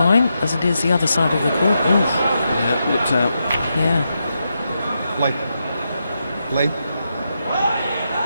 as it is the other side of the court. Ooh. Yeah, looked out. Yeah. Play. Play.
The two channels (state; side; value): inverted; both; correlation -0.85